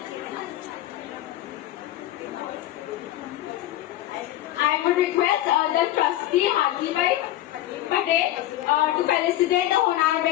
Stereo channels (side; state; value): right; quieter; 14.3 dB